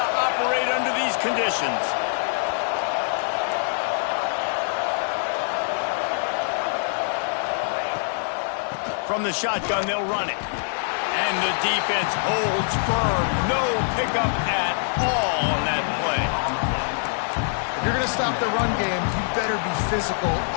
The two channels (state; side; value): silent; right; digital silence